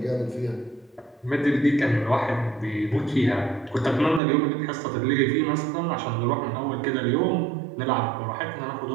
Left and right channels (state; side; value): drops out; left; at 4.2 s